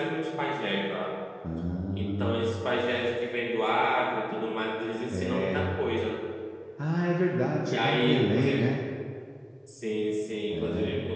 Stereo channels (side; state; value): both; identical; correlation 1.00